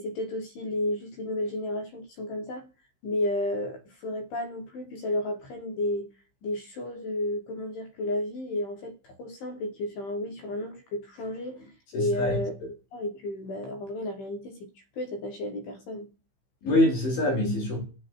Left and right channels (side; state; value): right; late; 15 ms